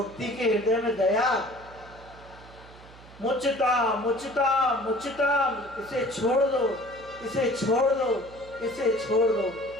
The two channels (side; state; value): right; noise; hum, 21 dB below the sound